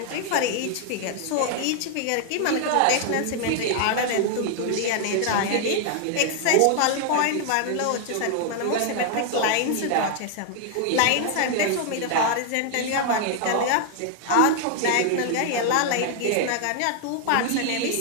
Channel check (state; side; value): different; both; correlation 0.00